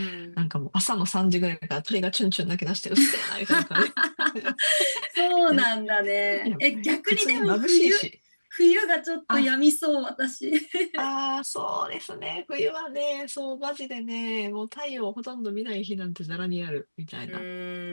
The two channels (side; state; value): both; inverted; correlation -1.00